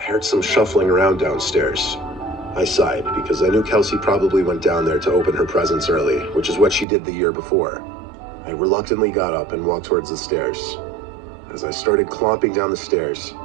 heard some shuffling around downstairs. I sighed because I knew Kelsey probably went down there to open her presents early, which is what she did the year before. I reluctantly got up and walked towards the stairs. As I started clomping down the stairs,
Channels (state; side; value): drops out; left; at 6.9 s